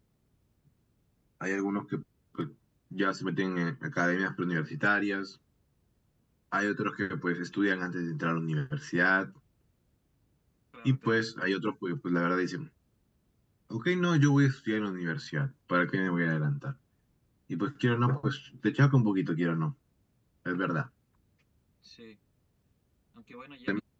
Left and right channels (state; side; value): identical; both; correlation 1.00